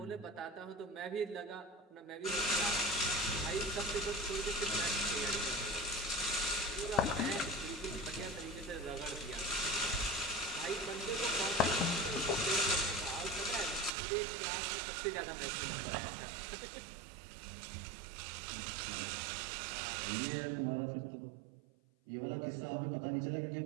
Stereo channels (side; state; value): left; drops out; at 13.9 s